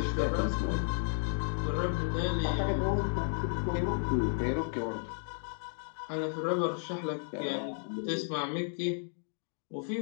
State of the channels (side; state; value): right; silent; digital silence